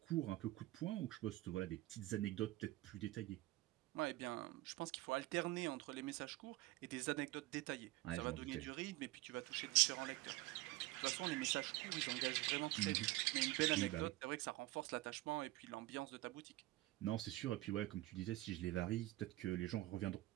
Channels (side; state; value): left; quieter; 18.4 dB